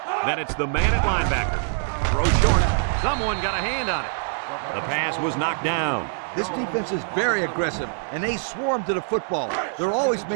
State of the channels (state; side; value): silent; left; digital silence